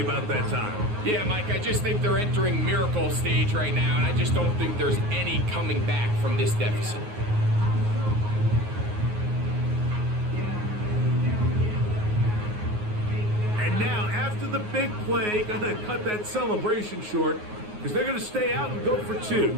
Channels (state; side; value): late; left; 9.5 ms